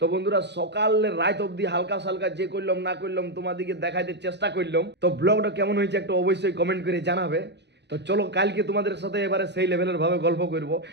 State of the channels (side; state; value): left; late; 0.50 ms